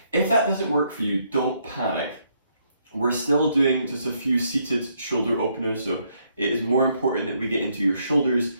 If that doesn't work for you, don't panic. We're still doing just a few seated shoulder openers, so it is more important that we get into your shoulders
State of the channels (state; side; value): inverted; both; correlation -0.73